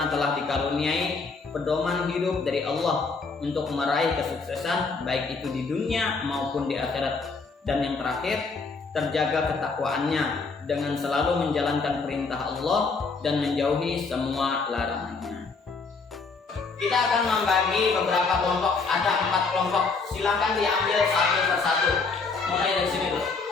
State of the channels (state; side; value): quieter; right; 4.4 dB